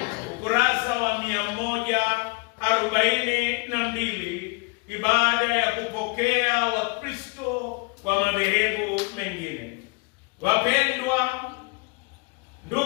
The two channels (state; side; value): quieter; right; 28.9 dB